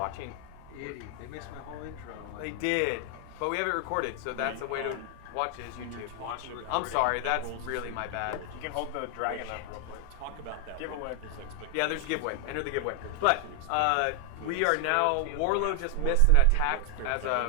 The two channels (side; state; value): both; different; correlation 0.00